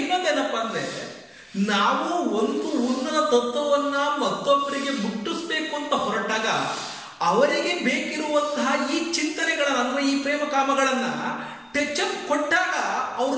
ಇನ್ನೊಂದೇನಪ್ಪ ಅಂದ್ರೆ, ನಾವು ಒಂದು ಉನ್ನತ ತತ್ವವನ್ನ ಮತ್ತೊಬ್ಬರಿಗೆ ಮುಟ್ಟಿಸ್ಬೇಕು ಅಂತ ಹೊರಟಾಗ ಅವರಿಗೆ ಬೇಕಿರುವಂತಹ ಈ ಚಿಂತನೆಗಳನ್ನ ಅಥವಾ ಈ ಪ್ರೇಮ ಕಾಮಗಳನ್ನ ಟೆಚಪ್ ಕೊಟ್ಟಾಗ ಅವರು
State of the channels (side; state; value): both; identical; correlation 1.00